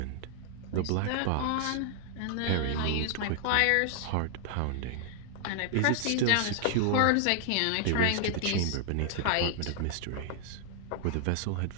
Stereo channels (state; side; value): different; both; correlation 0.00